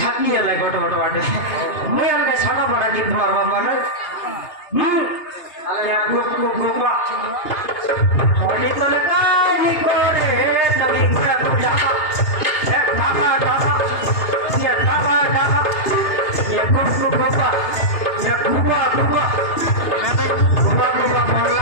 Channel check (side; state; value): right; late; 2.8 ms